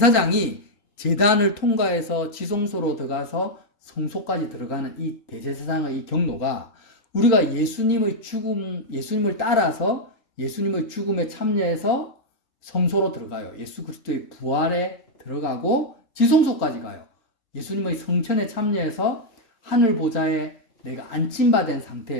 제단을 통과해서 지성소로 들어가서 성소까지 들어가는 이 대제사장의 이 경로가 우리가 예수님의 죽음, 예수님을 따라서 예수님의 죽음에 참여해서 성소로 들어가요. 예수 그리스도의 부활에 들어가고 지성소까지 가요. 예수님의 성천에 참여해서 하늘 보좌에 내가 안침받은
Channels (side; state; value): right; late; 3.8 ms